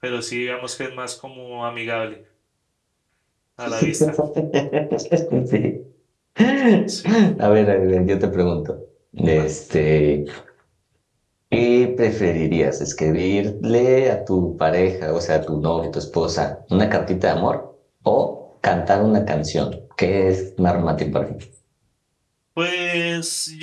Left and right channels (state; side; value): identical; both; correlation 1.00